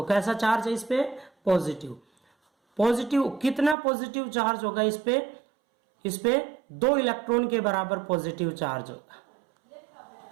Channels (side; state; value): left; drops out; at 3.8 s